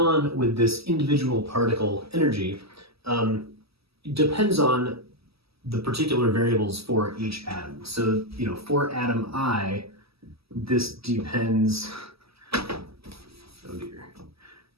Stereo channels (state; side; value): late; left; 0.77 ms